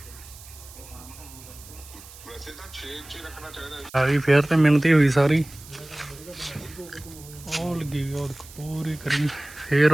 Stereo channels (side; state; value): right; noise; hiss, 19 dB below the sound